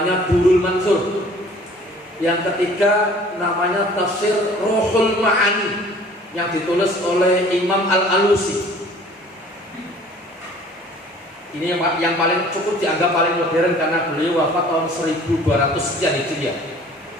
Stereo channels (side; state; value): both; normal; correlation 0.51